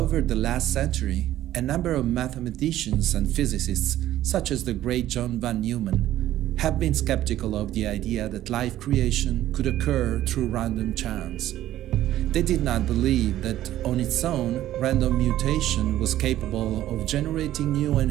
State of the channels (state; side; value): quieter; left; 13.4 dB